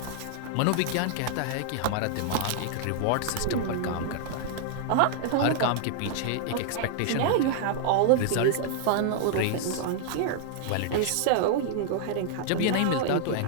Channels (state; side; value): different; both; correlation -0.01